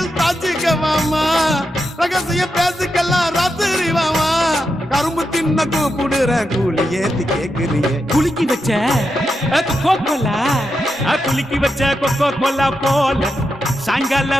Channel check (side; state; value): both; normal; correlation 0.86